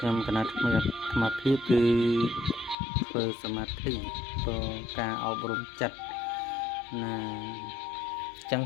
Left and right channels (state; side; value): drops out; right; at 2.8 s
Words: ្ញុំគណៈថ្មីអាត្មាភាពគឺធ្វើសមាធិព្រោះការអប់រំចិត្តណាចឹង